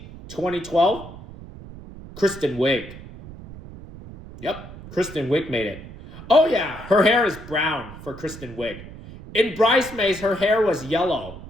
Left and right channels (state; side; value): noise; right; rumble, 15 dB below the sound